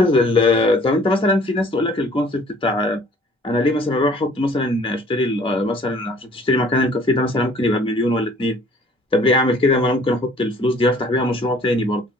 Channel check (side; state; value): both; normal; correlation 0.54